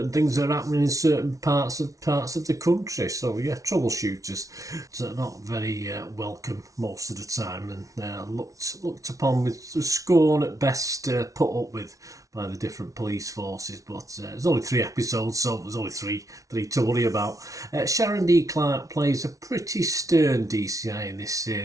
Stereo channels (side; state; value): left; late; 0.17 ms